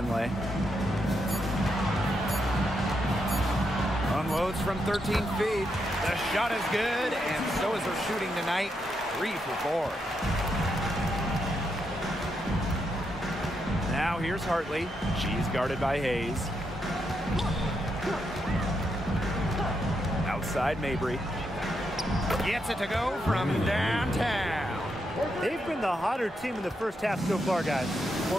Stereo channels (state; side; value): normal; both; correlation 0.81